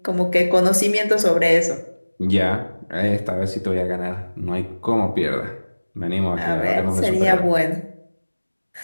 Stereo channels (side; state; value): both; inverted; correlation -1.00